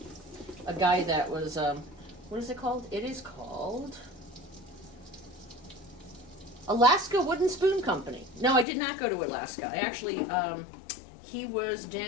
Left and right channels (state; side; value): drops out; right; at 8.7 s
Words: guy that was, what is it called? It is called Alaska Wooden Spoon Company. No, I did not go to Alaska. I actually, he was